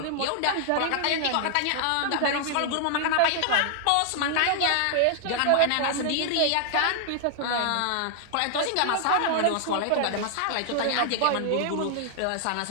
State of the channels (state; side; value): different; both; correlation 0.00